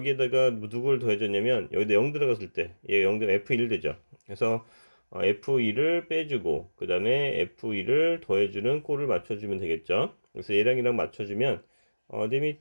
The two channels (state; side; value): inverted; both; correlation -1.00